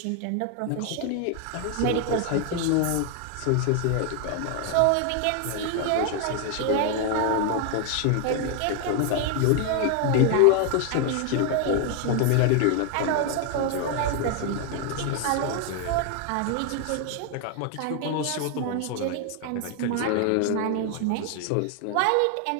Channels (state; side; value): different; both; correlation 0.01